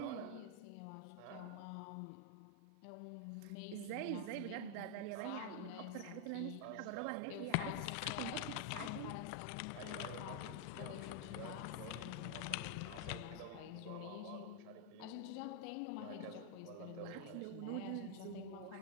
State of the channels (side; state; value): both; different; correlation 0.00